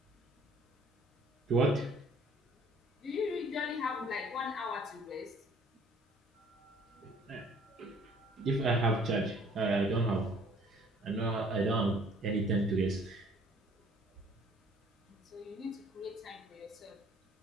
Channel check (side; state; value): both; normal; correlation 0.56